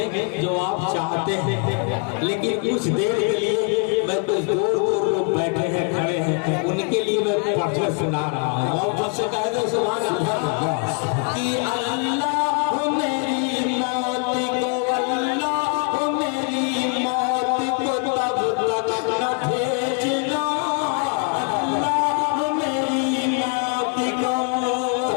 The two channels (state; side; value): quieter; right; 38.8 dB